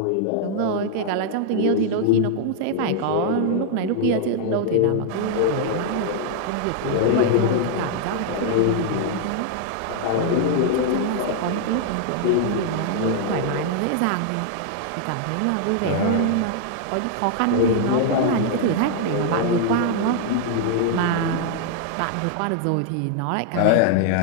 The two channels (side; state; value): both; different; correlation 0.00